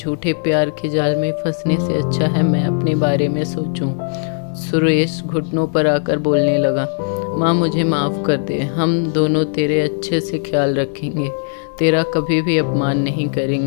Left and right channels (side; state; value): right; silent; digital silence